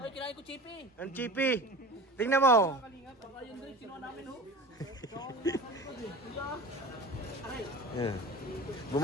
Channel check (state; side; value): normal; both; correlation 0.36